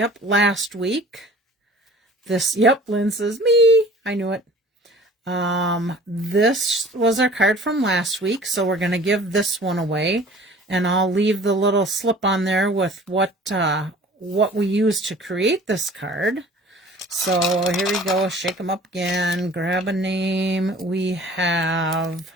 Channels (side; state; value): both; normal; correlation 0.48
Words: last week. Yep, Lynn says, me. I knew it. This was our card from last week, so we're going to give this one away. And I'll leave the little slip on there with what we used to create this card. So here we go. Shake them up again. Grab a name. We have